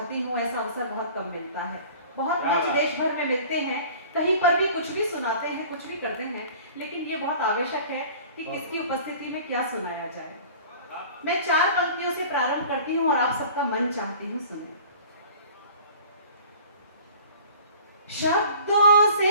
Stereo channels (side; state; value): both; inverted; correlation -0.45